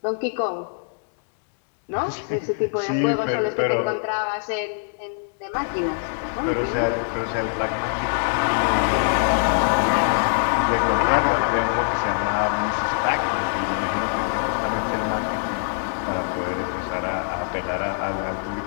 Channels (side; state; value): right; silent; digital silence